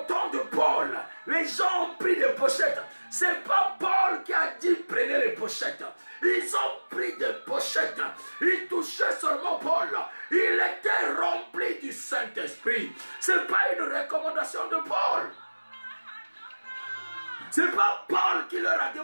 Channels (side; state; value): both; inverted; correlation -1.00